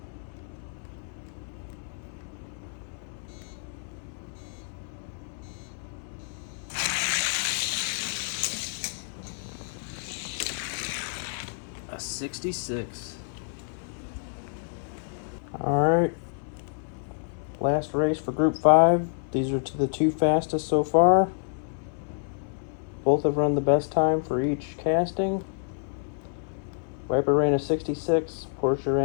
A 66. Alright. Last race for Group 5. These are to the 2 fastest so far. Both have run the best time for each casting. Viper ran a 66, Porsche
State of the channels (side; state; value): right; silent; 59 dB below the other